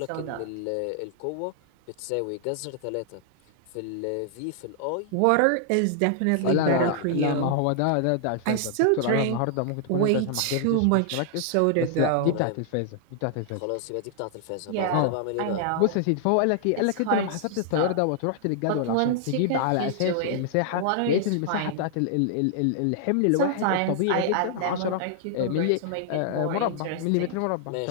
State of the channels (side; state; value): both; different; correlation -0.01